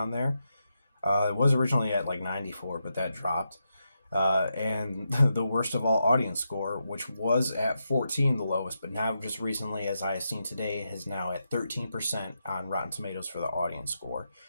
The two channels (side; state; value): both; inverted; correlation -0.85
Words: there. It was originally at like 94, but that dropped. And the worst of all audience score, which was at 14, the lowest, but now just recently, as I have seen today, is now at 13% on Rotten Tomatoes for the audience score.